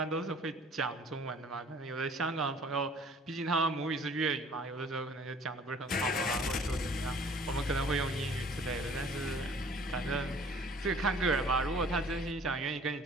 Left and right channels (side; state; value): both; normal; correlation 0.52